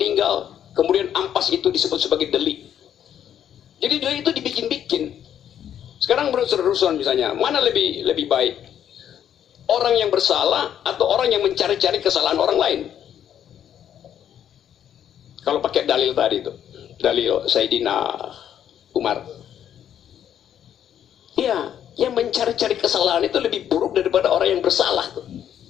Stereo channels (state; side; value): quieter; right; 9.8 dB